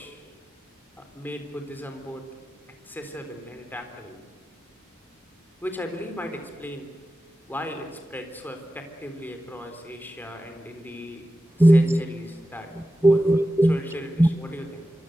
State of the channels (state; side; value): normal; both; correlation 0.93